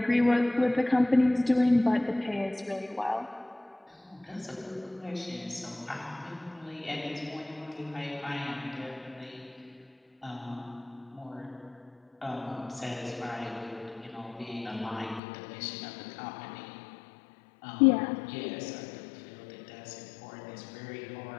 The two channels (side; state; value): right; drops out; at 15.2 s